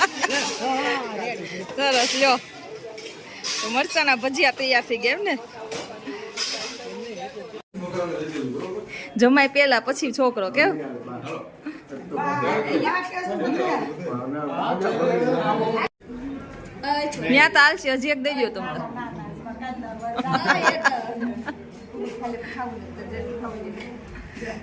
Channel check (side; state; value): both; identical; correlation 1.00